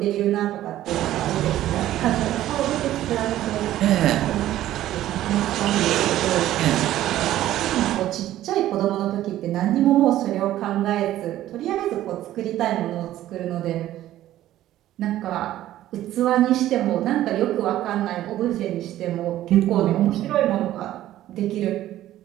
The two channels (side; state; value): left; quieter; 13.6 dB